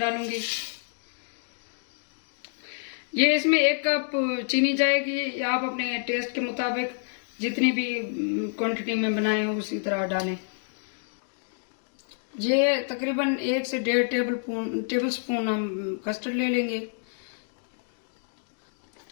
ये इसमें 1 कप चीनी जाएगी, या आप अपने टेस्ट के मुताबिक जितनी भी क्वांटिटी में बनाए उसी तरह डालें। ये तकरीबन 1 से 1.5 टेबल स्पून हम कस्टर्ड ले लेंगे।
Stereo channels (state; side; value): silent; right; digital silence